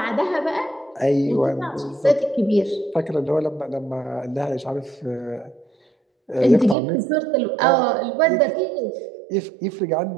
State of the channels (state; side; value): drops out; left; at 6.8 s